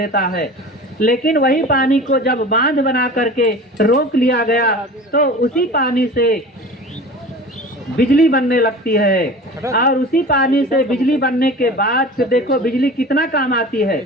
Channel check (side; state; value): both; normal; correlation 0.38